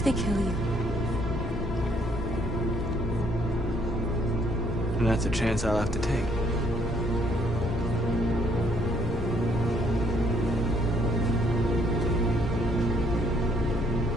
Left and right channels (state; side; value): noise; left; rumble, 6 dB below the sound